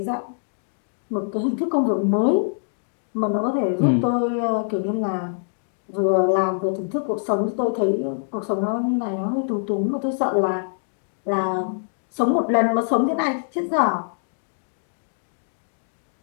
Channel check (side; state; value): right; silent; digital silence